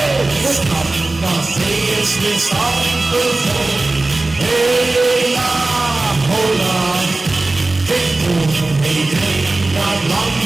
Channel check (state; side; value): quieter; left; 3.1 dB